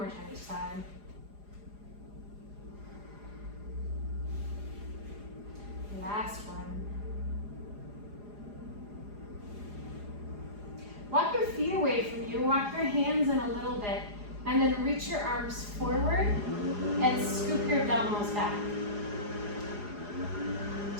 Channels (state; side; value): late; left; 4.9 ms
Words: time each side. Last one. Walk your feet away from you. Walk your hands in a little bit. And then reach your arms forward and scoop your abdominals back.